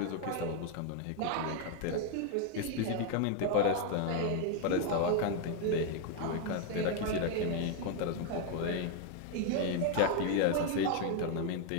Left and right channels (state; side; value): different; both; correlation 0.00